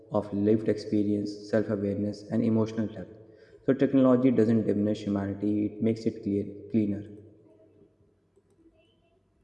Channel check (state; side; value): identical; both; correlation 1.00